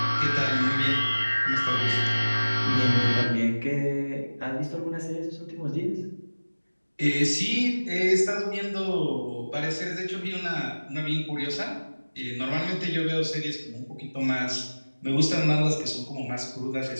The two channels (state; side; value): inverted; both; correlation -1.00